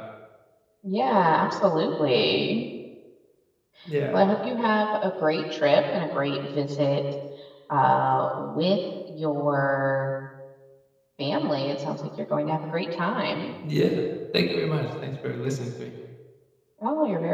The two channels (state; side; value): identical; both; correlation 1.00